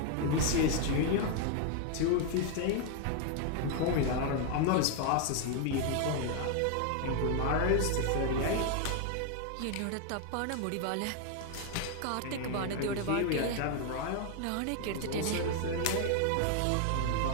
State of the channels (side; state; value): both; different; correlation 0.00